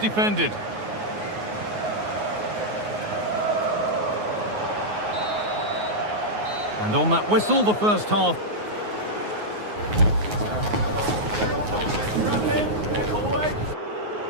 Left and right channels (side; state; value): left; late; 9.5 ms